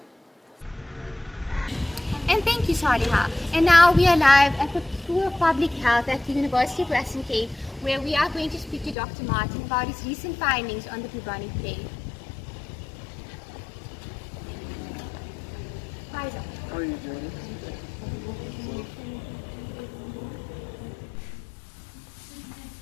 And thank you, Saliha. And now we are live at the School of Public Health at the University of Western Cape, where we are going to speak to Dr. Martin about his recent findings on the bubonic plague. Hi, Doctor. How are you doing?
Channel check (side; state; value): right; drops out; at 9.0 s